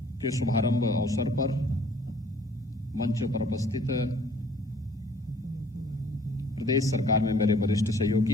के शुभारंभ अवसर पर मंच पर उपस्थित प्रदेश सरकार में मेरे वरिष्ठ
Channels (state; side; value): normal; both; correlation 0.56